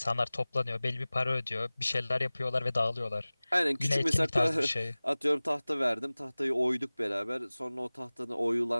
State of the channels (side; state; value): both; inverted; correlation -0.99